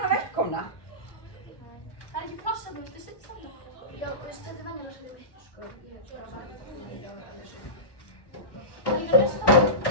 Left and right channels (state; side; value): late; right; 1.2 ms